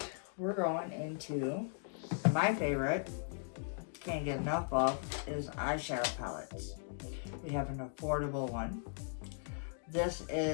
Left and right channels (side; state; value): right; silent; digital silence